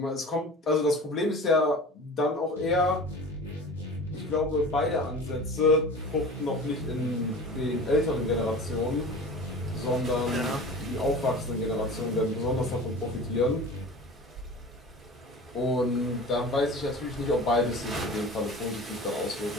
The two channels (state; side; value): normal; both; correlation 0.37